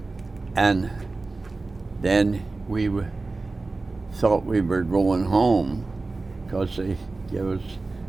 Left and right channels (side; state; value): left; quieter; 3.5 dB